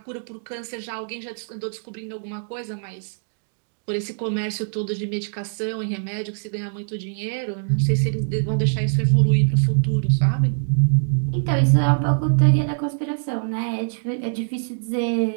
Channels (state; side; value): silent; left; digital silence